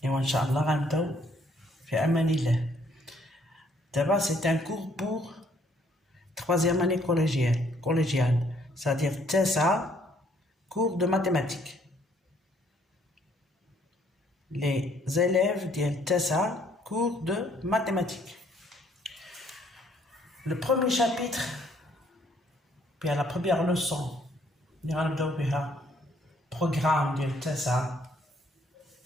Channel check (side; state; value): both; normal; correlation 0.66